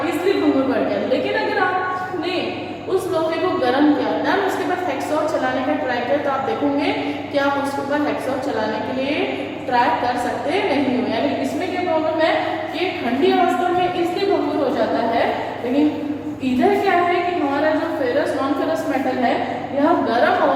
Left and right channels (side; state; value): both; identical; correlation 1.00